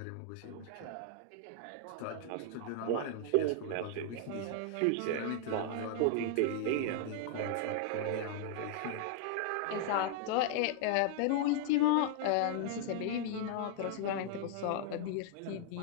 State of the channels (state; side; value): different; both; correlation -0.01